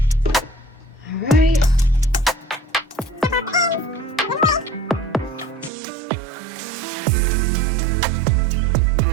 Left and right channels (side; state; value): left; drops out; at 5.7 s